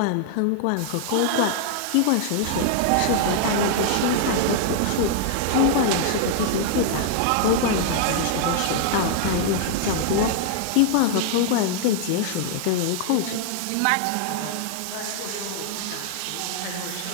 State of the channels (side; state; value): both; different; correlation -0.01